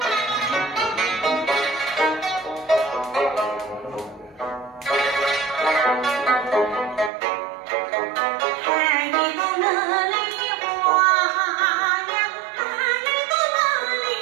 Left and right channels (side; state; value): left; drops out; at 7.1 s